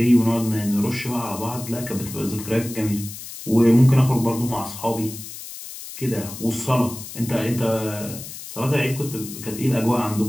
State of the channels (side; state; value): left; noise; hiss, 12 dB below the sound